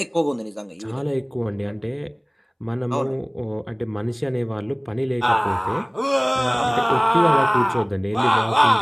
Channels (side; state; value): both; identical; correlation 1.00